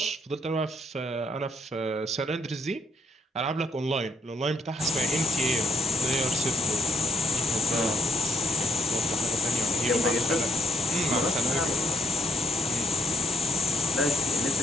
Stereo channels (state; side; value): normal; both; correlation 0.75